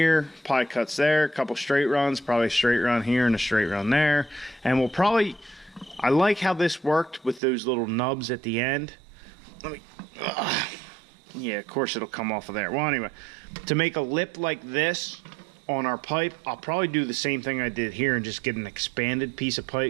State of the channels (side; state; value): left; drops out; at 7.4 s